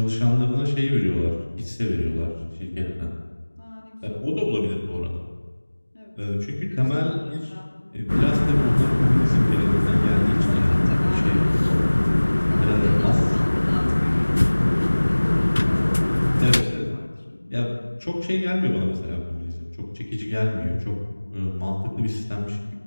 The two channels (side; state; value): both; inverted; correlation -1.00